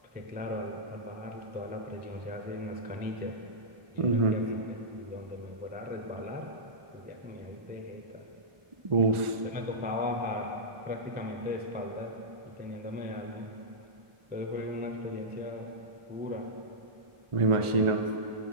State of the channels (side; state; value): left; late; 1.4 ms